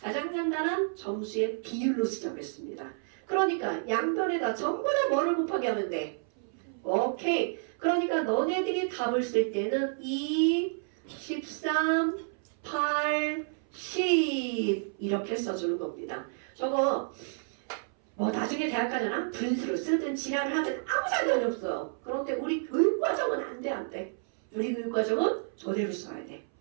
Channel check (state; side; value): silent; left; 58 dB below the other